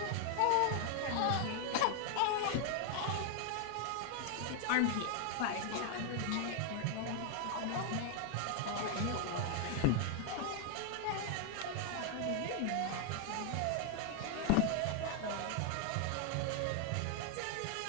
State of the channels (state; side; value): different; both; correlation 0.00